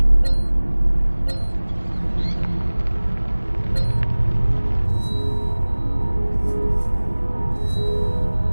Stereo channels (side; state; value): both; inverted; correlation -1.00